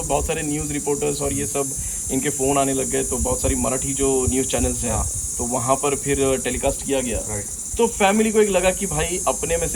बहुत सारे न्यूज़ रिपोर्टर्स और ये सब इनके फ़ोन आने लग गए, तो बहुत सारी मराठी जो न्यूज़ चैनल्स हैं तो वहाँ पर फिर टेलीकास्ट किया गया। तो फैमिली को एक लगा कि भाई अपने में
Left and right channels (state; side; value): identical; both; correlation 1.00